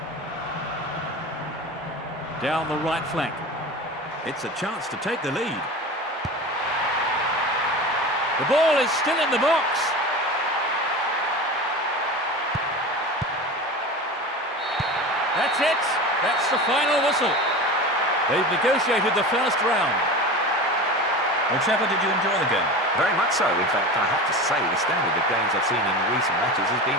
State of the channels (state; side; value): normal; both; correlation 0.31